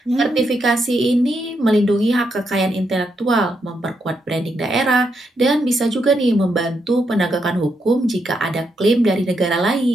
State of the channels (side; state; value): both; normal; correlation 0.80